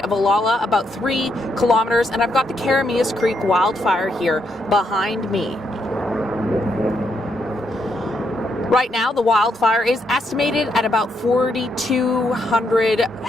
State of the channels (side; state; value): both; normal; correlation 0.78